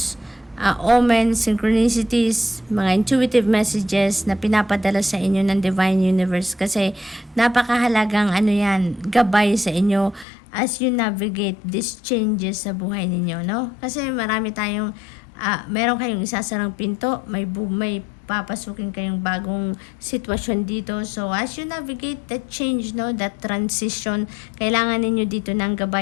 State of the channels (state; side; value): drops out; right; at 10.2 s